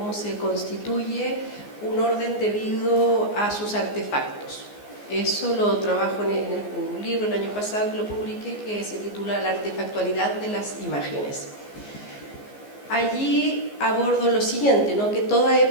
se constituye un orden debido a sus artefactos. Eso lo trabajo en un libro el año pasado que lo publiqué, que se titula La artefactualidad de las imágenes. Allí abordo lo siguiente, ¿no? Que toda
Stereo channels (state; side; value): late; right; 14 ms